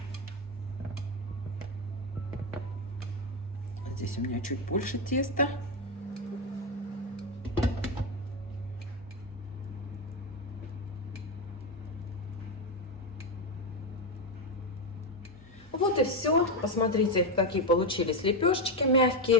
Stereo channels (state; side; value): normal; both; correlation 0.10